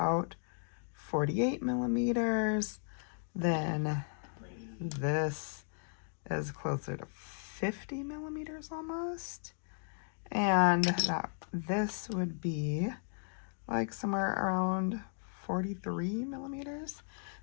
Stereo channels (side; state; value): right; silent; 54 dB below the other